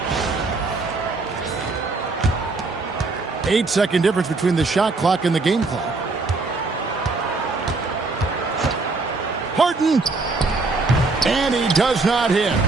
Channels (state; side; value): quieter; left; 3.7 dB